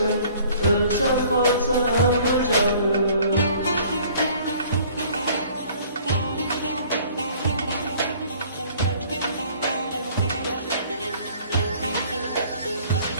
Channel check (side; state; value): both; inverted; correlation -0.54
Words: ölsem kalsam bu canım.